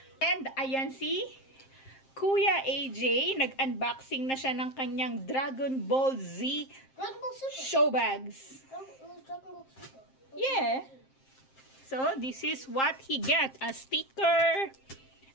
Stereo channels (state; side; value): late; right; 7.6 ms